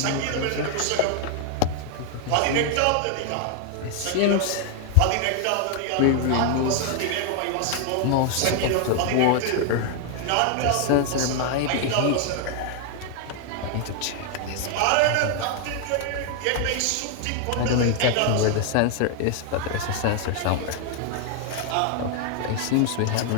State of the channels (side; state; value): both; different; correlation 0.00